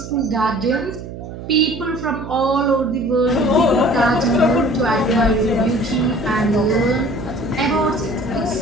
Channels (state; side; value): noise; right; hum, 11 dB below the sound